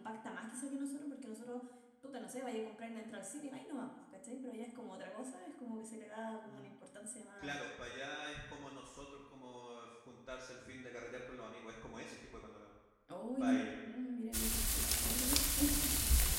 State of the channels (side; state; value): both; identical; correlation 1.00